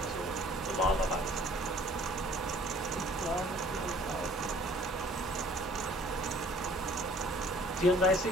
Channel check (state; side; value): normal; both; correlation 0.55